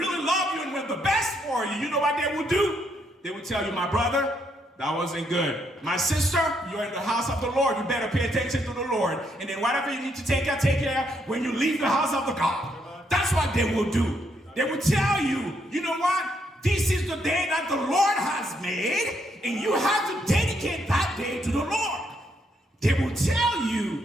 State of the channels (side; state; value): both; normal; correlation 0.75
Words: love you and want the best for you, you know what they will do? They will tell you, my brother, that wasn't good. My sister, you're in the house of the Lord. You better pay attention to the Lord. And then whatever you need to take care when you leave the house of the God. That's what they will do. They will tell you, you know what? This is the day that the Lord has made, and you have to dedicate that day to the Lord. They will tell